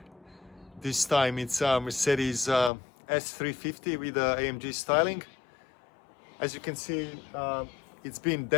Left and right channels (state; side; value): drops out; right; at 2.7 s